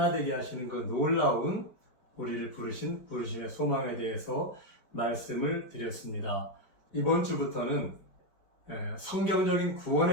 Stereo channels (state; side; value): late; right; 4.9 ms